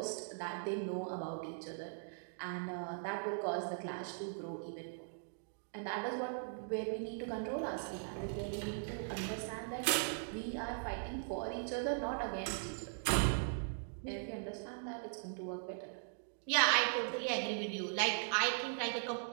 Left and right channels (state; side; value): silent; left; digital silence